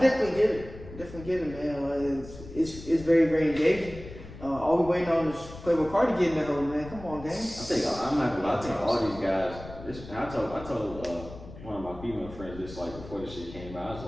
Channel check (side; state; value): left; noise; rumble, 15 dB below the sound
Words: get it, man. It's very very engaging. All we waiting on is Playboy Cardi getting that hoe, man. Come on, gang. I'm not gonna lie, I think all these guys. I told one of my female friends this like before this shit came out. I was